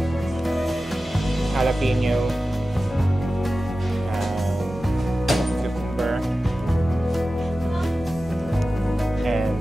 jalapeno, cucumber, and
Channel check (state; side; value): normal; both; correlation 0.94